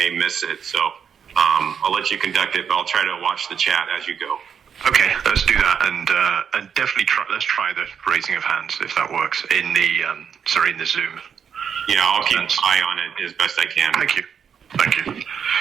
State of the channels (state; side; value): quieter; left; 7.4 dB